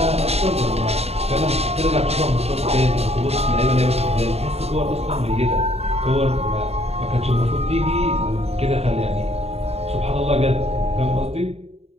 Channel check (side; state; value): left; late; 0.30 ms